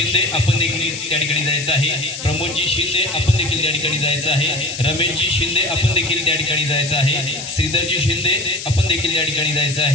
आपण देखील त्या ठिकाणी जायचं आहे, प्रमोदजी शिंदे आपण देखील त्या ठिकाणी जायचं आहे, रमेशजी शिंदे आपण देखील त्या ठिकाणी जायचं आहे, श्रीधरजी शिंदे आपण देखील त्या ठिकाणी जायचं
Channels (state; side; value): noise; left; hiss, 8 dB below the sound